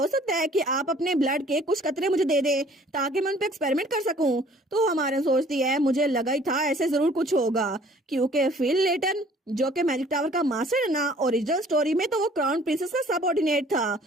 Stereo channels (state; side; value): normal; both; correlation 0.54